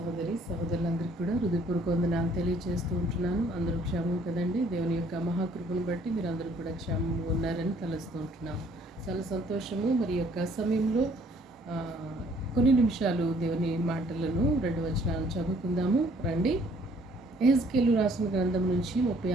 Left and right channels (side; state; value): both; normal; correlation 0.61